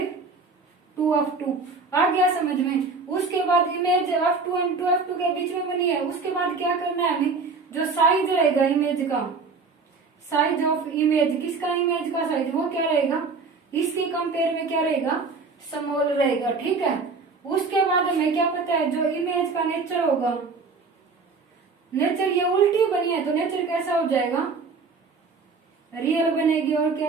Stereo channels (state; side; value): quieter; left; 4.4 dB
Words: 2f2। आ गया समझ में। उसके बाद इमेज f2 एंड 2f2 के बीच में बनी है, उसके बाद क्या करना है हमें, जो साइज रहेगा इमेज का, साइज ऑफ इमेज, किसका इमेज का साइज, वो क्या रहेगा, इसके कंपेयर में क्या रहेगा, स्मॉल रहेगा, ठीक है। उसके बाद हमें क्या पता है, जो इमेज का नेचर होगा, नेचर ये उल्टी बनी है तो नेचर कैसा हो जाएगा, रियल बनेगी, और